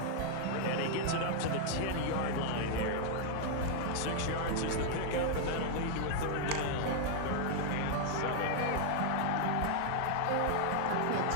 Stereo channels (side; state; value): both; different; correlation 0.00